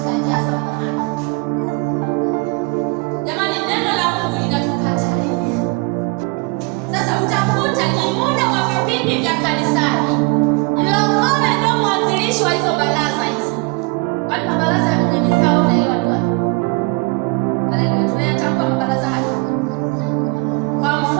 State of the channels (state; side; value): quieter; left; 29.1 dB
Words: njia za wenye haki. Jamani, neno la Mungu linatukatalia. Sasa utakuta ni muda wa vipindi vya kanisani, mlokole ndio mwanzilishi wa hizo baraza hizo. Kwani mabaraza ya wenye mizaha unaelewa tu? Haleluya. Tunayatambua mabaraza